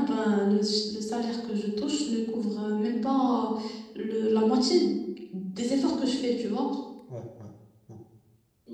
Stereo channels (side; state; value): both; identical; correlation 1.00